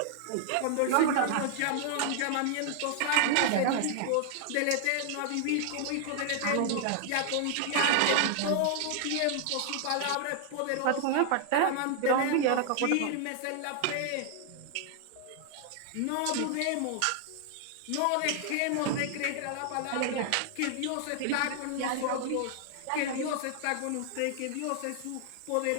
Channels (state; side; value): different; both; correlation 0.00